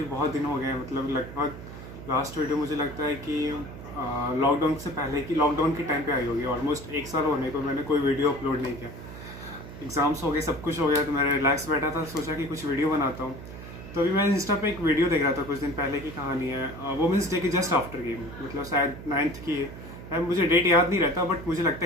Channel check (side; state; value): right; noise; hum, 13 dB below the sound